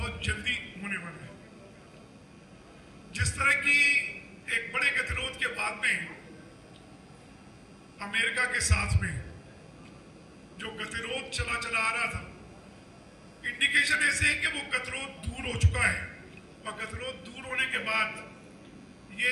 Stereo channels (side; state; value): both; identical; correlation 1.00